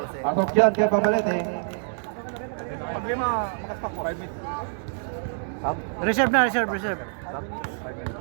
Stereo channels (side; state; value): left; silent; digital silence